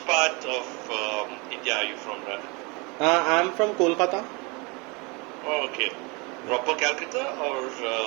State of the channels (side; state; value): left; quieter; 28.6 dB